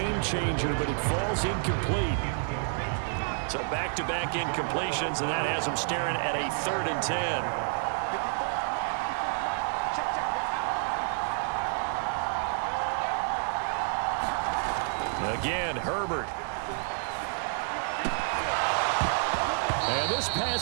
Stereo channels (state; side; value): silent; left; 58 dB below the other